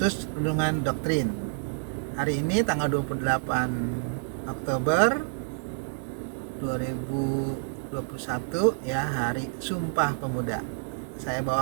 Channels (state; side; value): silent; left; digital silence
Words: Renungan Doktrin. Hari ini tanggal 28 Oktober 2021 ya, hari Sumpah Pemuda. Saya